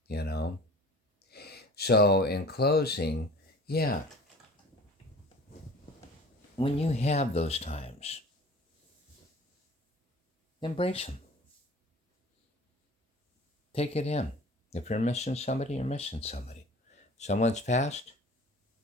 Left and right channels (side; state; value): both; normal; correlation 0.44